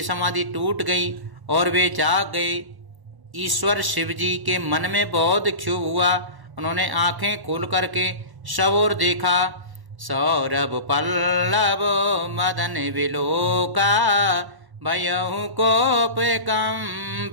समाधि टूट गई और वे जाग गए। ईश्वर शिवजी के मन में बहुत क्षोभ हुआ। उन्होंने आंखें खोल करके सब ओर देखा। सौरभ पल्लव मदन विलोका, भयहु कोप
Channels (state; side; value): late; left; 1.1 ms